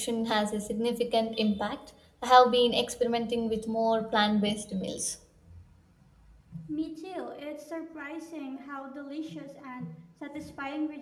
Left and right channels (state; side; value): identical; both; correlation 1.00